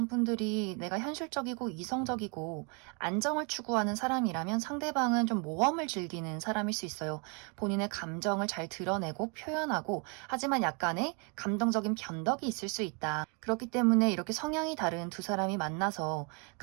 분들이 내가 현실적이고 이성적이고 안정을 추구하는 사람이라면 상대방은 좀 모험을 즐기는 사람일 수 있어요. 본인의 감정을 잘 드러내고 표현하고, 하지만 약간의 감정적인 변덕이 있을 수 있다. 그렇기 때문에 이렇게 성향이 다른 두 사람이 만나서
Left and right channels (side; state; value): left; quieter; 34.5 dB